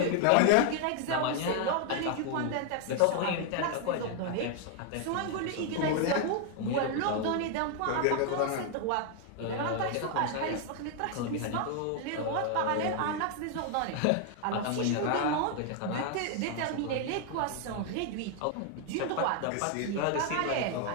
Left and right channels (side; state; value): both; different; correlation 0.00